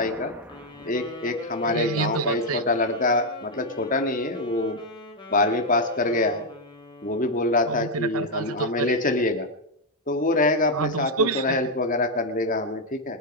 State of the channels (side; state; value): both; normal; correlation 0.00